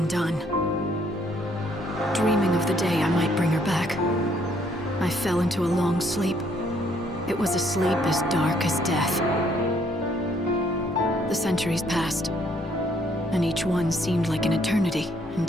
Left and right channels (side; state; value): both; normal; correlation 0.67